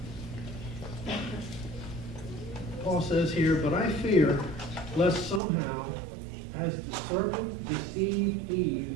Paul says here, "But I fear lest somehow, as the serpent deceived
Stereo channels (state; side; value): drops out; left; at 5.4 s